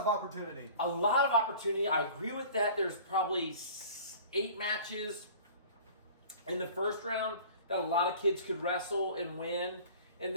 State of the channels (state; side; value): inverted; both; correlation -0.44